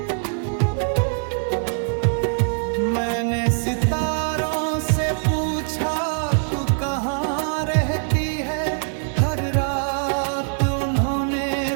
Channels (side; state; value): left; silent; digital silence